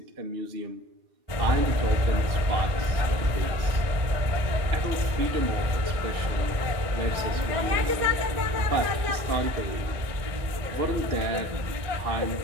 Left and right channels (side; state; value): left; late; 1.5 ms